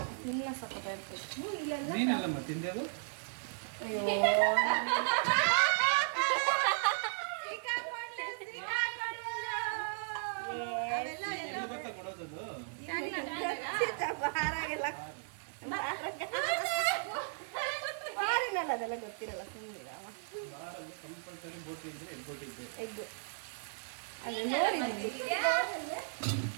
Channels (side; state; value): left; silent; digital silence